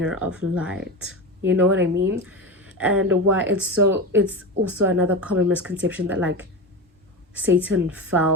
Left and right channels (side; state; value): both; normal; correlation 0.22